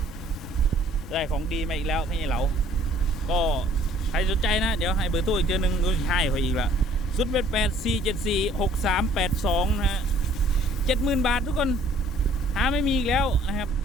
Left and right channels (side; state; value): both; normal; correlation 0.58